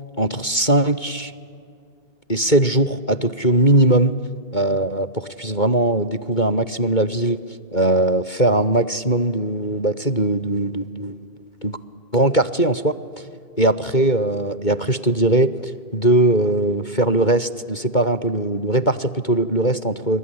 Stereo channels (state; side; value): late; right; 2.2 ms